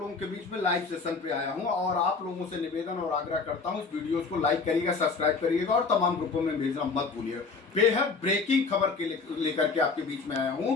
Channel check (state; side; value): quieter; right; 4.5 dB